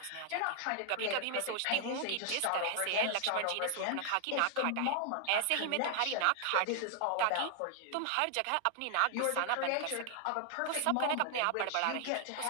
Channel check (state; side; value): different; both; correlation 0.00